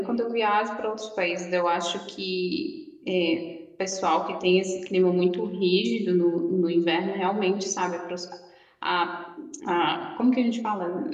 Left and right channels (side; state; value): both; identical; correlation 1.00